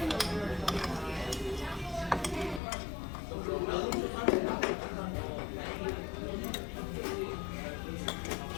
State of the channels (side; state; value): right; drops out; at 2.6 s